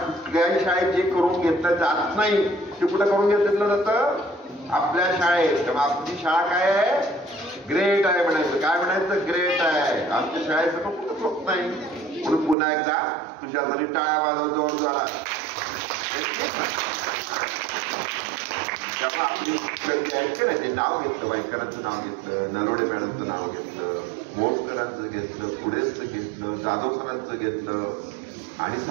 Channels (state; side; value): drops out; left; at 12.6 s